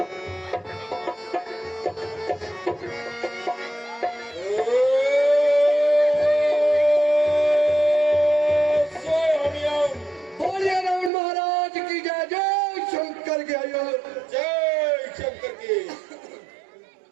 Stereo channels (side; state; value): left; drops out; at 11.1 s